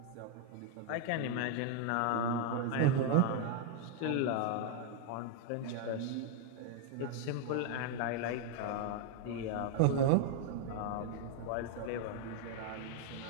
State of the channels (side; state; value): both; different; correlation 0.00